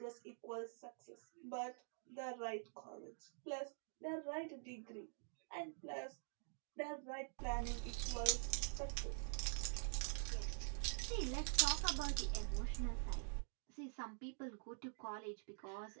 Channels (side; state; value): left; silent; digital silence